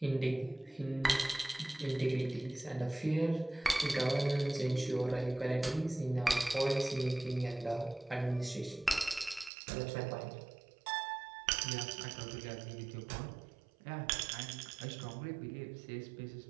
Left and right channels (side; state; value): left; drops out; at 9.5 s